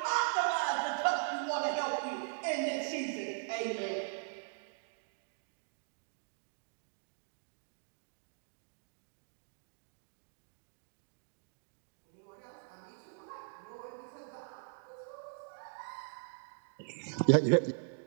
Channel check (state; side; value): silent; left; digital silence